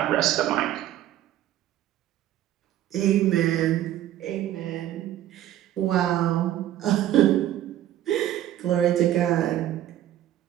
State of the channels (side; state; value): left; quieter; 12.6 dB